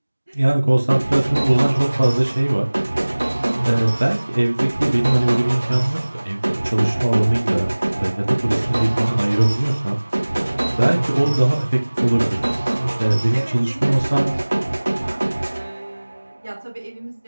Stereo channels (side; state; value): both; inverted; correlation -1.00